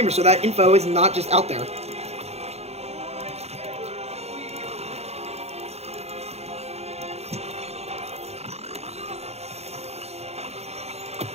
so that info is not just out there.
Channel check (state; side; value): late; left; 0.31 ms